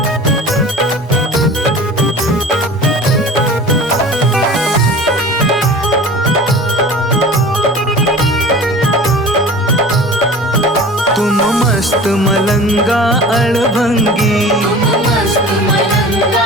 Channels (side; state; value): both; normal; correlation 0.39